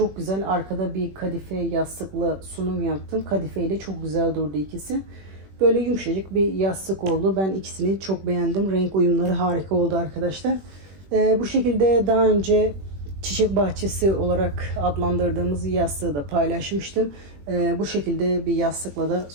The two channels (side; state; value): left; late; 21 ms